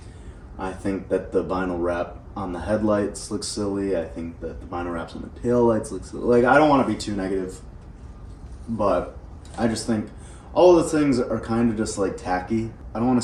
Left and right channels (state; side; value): identical; both; correlation 1.00